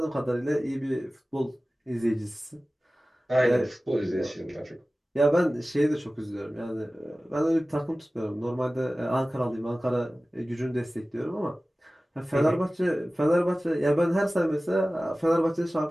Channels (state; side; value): normal; both; correlation 0.97